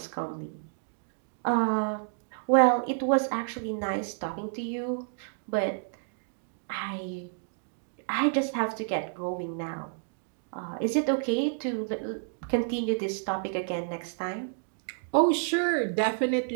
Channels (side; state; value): left; silent; digital silence